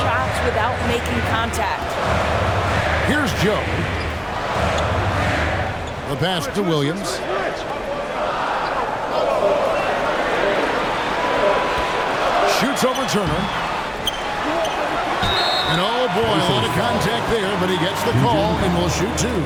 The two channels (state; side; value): identical; both; correlation 1.00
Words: shots without making contact. Here's Joe. The pass to Williams. Shoots over Turner. And oh boy, a lot of contact there, but he gets the call and will shoot 2.